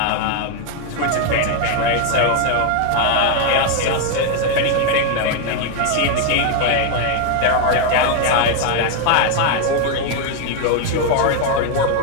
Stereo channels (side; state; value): both; different; correlation 0.01